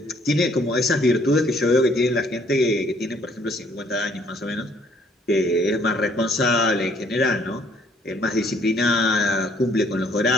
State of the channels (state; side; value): normal; both; correlation 0.63